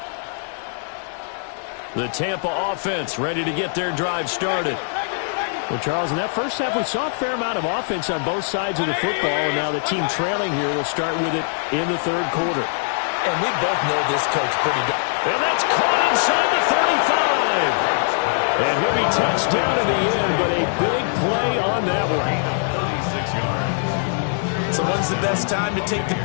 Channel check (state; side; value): silent; right; digital silence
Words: The Tampa offense ready to get their drive started. Well, Charles, in that first half, we saw a fair amount of offense on both sides of the football, and now the team trailing here will start with it in the 3rd quarter. And we both know this coach pretty good. And that's caught inside the 35. And he'll be touched down at the end, but a big play on that one. 36 yards. So when's the best time to take the